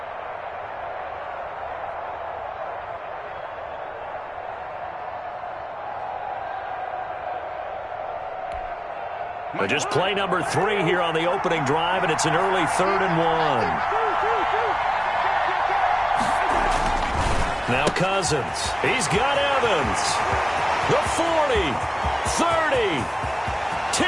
But just play number 3 here on the opening drive, and it's an early 3rd and 1. Now Cousins. He's got Evans. The 40, 30,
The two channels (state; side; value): identical; both; correlation 1.00